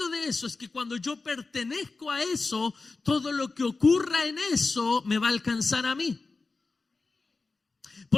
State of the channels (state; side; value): quieter; right; 3.9 dB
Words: de eso es que cuando yo pertenezco a eso, todo lo que ocurra en eso me va a alcanzar a mí.